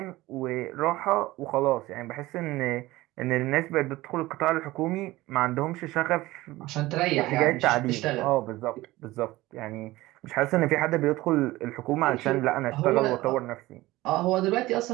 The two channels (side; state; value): left; quieter; 18.4 dB